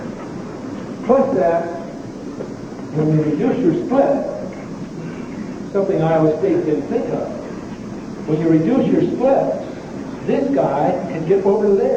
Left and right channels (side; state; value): both; identical; correlation 1.00